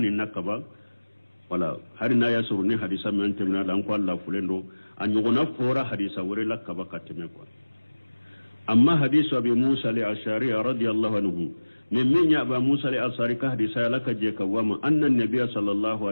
nakaba wala hari na yasuru ni hadisa men temena dan ko Allah fulendo anyogona fora hadisa wore lakaba kateme ko amma hadisu abi Musa al-Ash'ari radiyallahu anhu min ya aba Musa al-Ash'ari ka hadisa laka je kawama anna an-nabiy sallallahu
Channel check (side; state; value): both; inverted; correlation -1.00